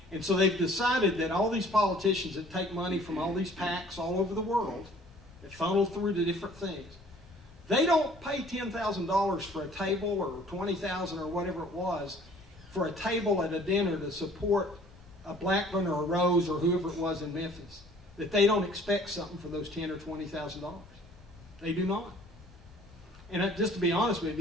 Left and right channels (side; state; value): both; normal; correlation 0.54